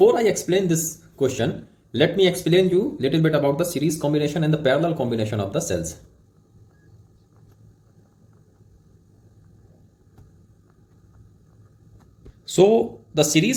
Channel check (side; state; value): both; identical; correlation 1.00